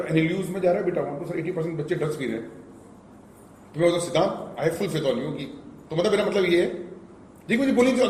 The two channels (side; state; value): both; identical; correlation 1.00